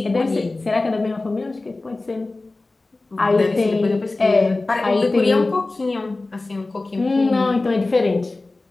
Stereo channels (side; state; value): right; quieter; 3.2 dB